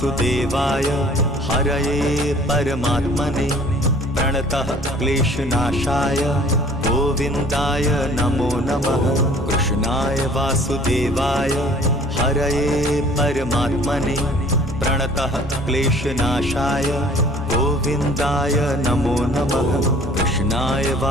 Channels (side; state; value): both; normal; correlation 0.52